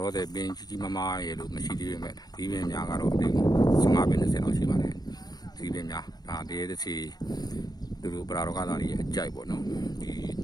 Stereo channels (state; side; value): late; right; 0.19 ms